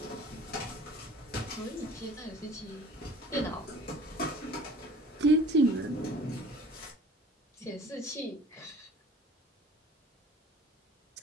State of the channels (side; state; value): both; normal; correlation 0.47